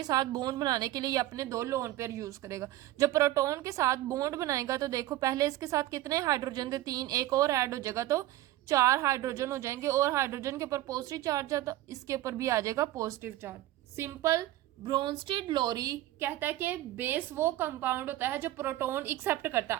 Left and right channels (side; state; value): left; quieter; 15.3 dB